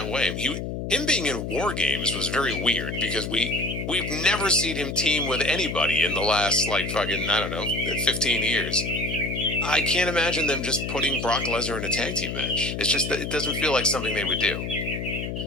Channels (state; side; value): noise; left; hum, 5 dB below the sound